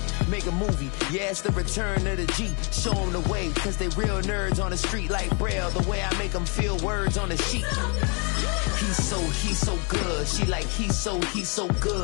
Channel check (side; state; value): right; quieter; 34.5 dB